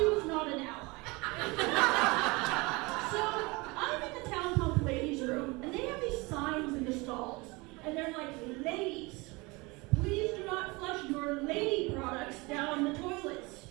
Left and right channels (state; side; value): quieter; left; 25.1 dB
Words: was not an ally. So I'm in the Town Pump ladies' room, and they have these signs in the stalls, and they're like, ladies, please do not flush your lady products down the toilets.